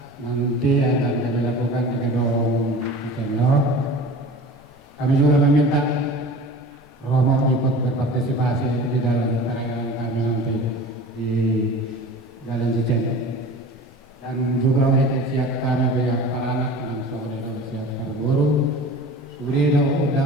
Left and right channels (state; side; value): normal; both; correlation 0.39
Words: nanti yang akan kami lakukan di Gedung Cicendo. Kami juga meminta Romo ikut berpartisipasi di dalam perayaan kami nanti di Jalan Cicendo. Dan juga untuk siap kami pihak para anak langsung itu siap berburu. Sudah ada